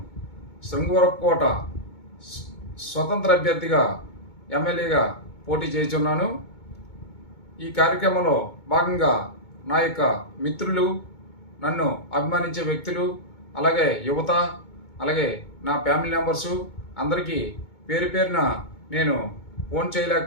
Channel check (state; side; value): late; right; 2.2 ms